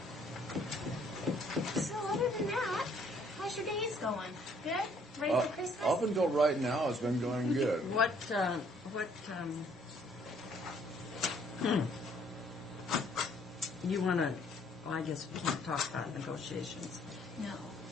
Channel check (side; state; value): both; normal; correlation 0.63